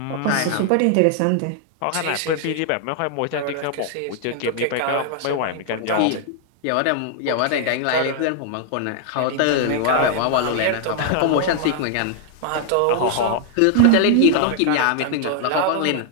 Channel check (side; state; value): both; different; correlation 0.00